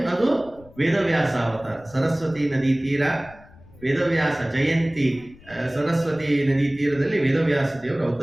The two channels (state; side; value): noise; left; rumble, 24 dB below the sound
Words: ವೇದವ್ಯಾಸ ಅವತಾರ. ಸರಸ್ವತಿ ನದಿ ತೀರ ವೇದವ್ಯಾಸ ಜಯಂತಿ, ಸರಸ್ವತಿ ನದಿ ತೀರದಲ್ಲಿ ವೇದವ್ಯಾಸ ದೇವರು